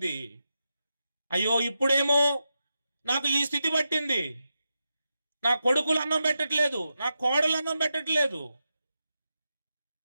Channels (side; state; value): both; inverted; correlation -0.89